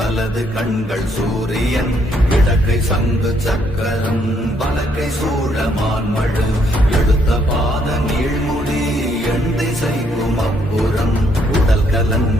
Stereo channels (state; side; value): normal; both; correlation 0.71